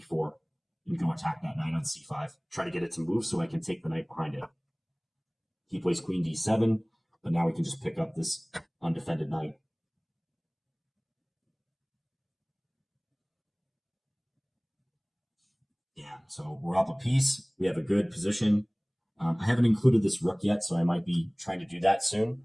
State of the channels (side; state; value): both; identical; correlation 1.00